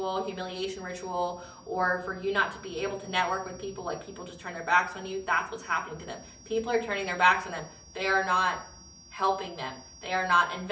humiliation ritual, or for you not to be able to network with people, like people just turn their backs on you, that's what's happening to them. People are turning their backs on them. They are not helping them. They are not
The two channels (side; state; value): both; identical; correlation 1.00